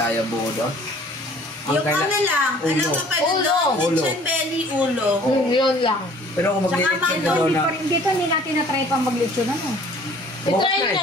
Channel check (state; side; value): normal; both; correlation 0.53